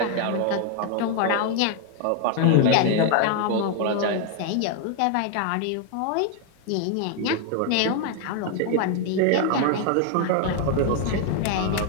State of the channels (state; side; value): different; both; correlation 0.00